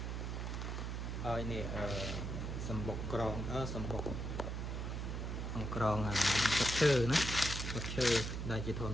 ហើយនេះសម្បុកក្រងសម្បុកអង្គក្រងទឹកឈើណាទឹកឈើដែលជាធម្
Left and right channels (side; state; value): right; noise; hum, 3 dB below the sound